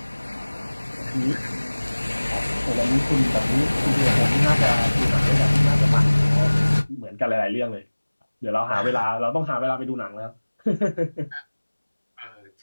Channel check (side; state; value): both; inverted; correlation -1.00